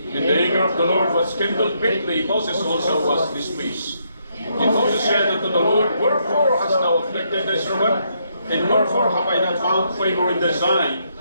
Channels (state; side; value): inverted; both; correlation -0.75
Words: the anger of the Lord was kindled greatly. Moses also was displeased. And Moses said unto the Lord, Wherefore hast thou afflicted thy servant? And wherefore have I not found favor in thy sight,